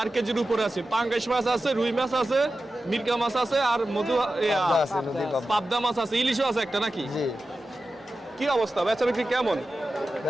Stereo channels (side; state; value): both; normal; correlation 0.93